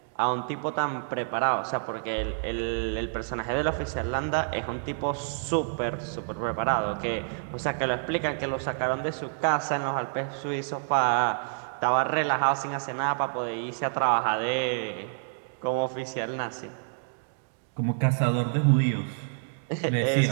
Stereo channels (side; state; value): left; silent; digital silence